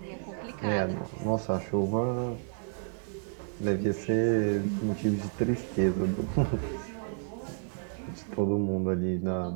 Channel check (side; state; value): left; silent; 57 dB below the other